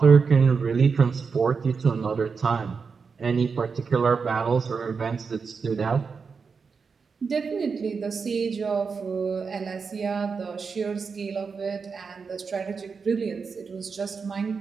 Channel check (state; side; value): quieter; left; 5.3 dB